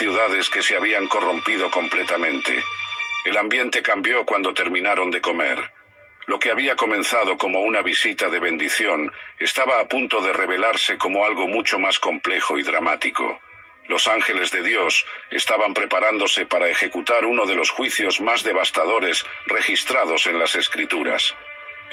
que se habían corrompido completamente. El ambiente cambió cuando terminaron de comer. Lo que había comenzado como una visita de bendición estaba a punto de revelarse como algo mucho más complejo y dramático. Los ángeles de Dios estaban preparándose para ejecutar uno de los juicios más devastadores registrados en las Escrituras.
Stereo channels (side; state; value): both; identical; correlation 1.00